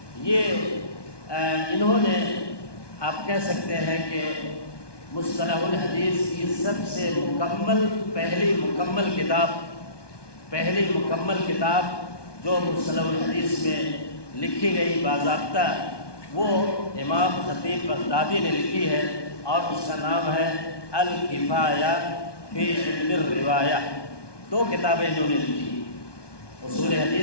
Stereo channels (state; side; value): late; right; 1.2 ms